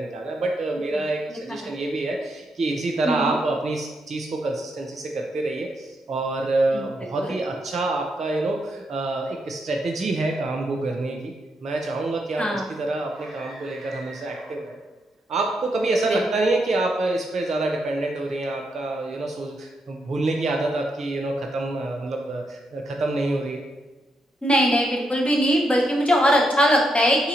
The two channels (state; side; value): normal; both; correlation 0.80